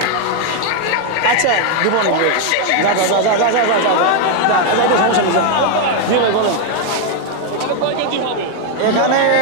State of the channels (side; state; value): both; different; correlation 0.00